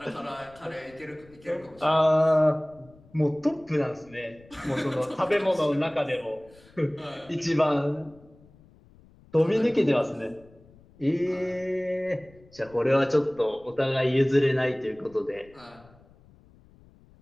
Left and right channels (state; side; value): noise; left; rumble, 26 dB below the sound